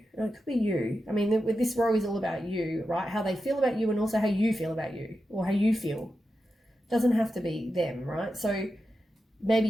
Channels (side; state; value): both; normal; correlation 0.90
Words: It could be you. I mean, with this row is all about you, right? How they feel about you and also how you feel about you or how you feel. It doesn't have to be them, right? So maybe